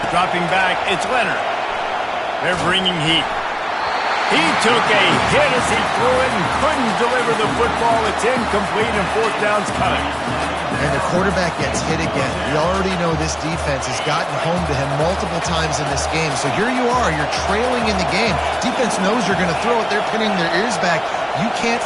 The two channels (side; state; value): both; identical; correlation 1.00